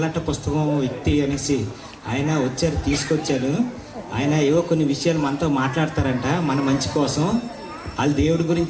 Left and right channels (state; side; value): identical; both; correlation 1.00